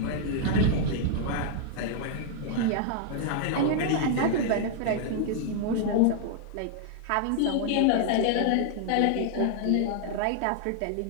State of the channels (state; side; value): different; both; correlation 0.00